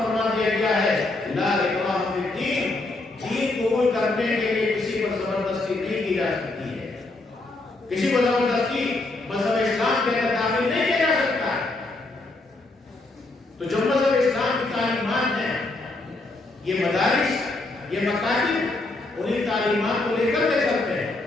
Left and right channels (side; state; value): right; quieter; 3.0 dB